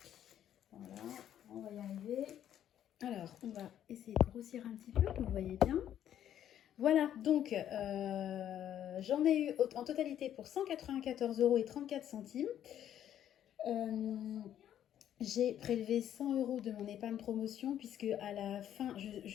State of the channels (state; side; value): quieter; right; 10.6 dB